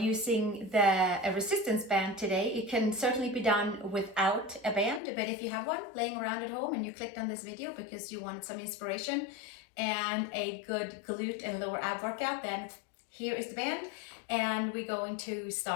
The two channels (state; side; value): drops out; right; at 5.0 s